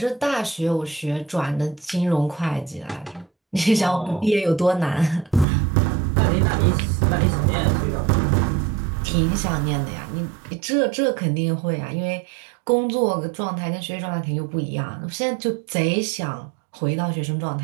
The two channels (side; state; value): left; drops out; at 5.5 s